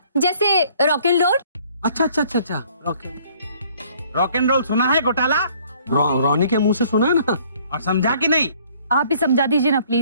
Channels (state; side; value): inverted; both; correlation -0.59